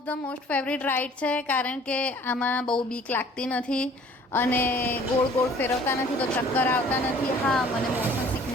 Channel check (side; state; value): both; normal; correlation 0.53